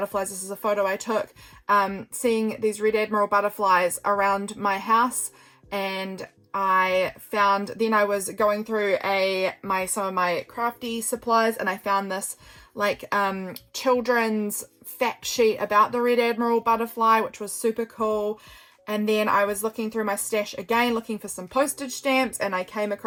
This is a photo I took, seeing these red admiral butterflies around my house, and I was going through some of my crafty supplies, and I found this children's fact sheet about the red admiral butterfly, which was super cool. And then I was looking through my stash again, looking for some postage stamps, and I came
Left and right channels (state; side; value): identical; both; correlation 1.00